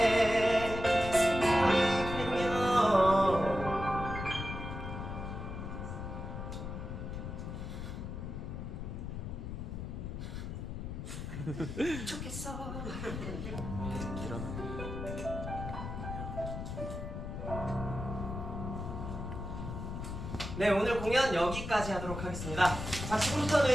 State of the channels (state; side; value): noise; left; rumble, 6 dB below the sound